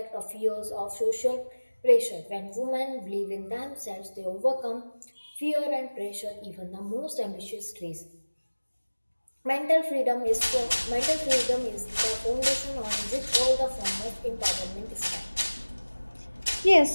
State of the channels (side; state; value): both; inverted; correlation -1.00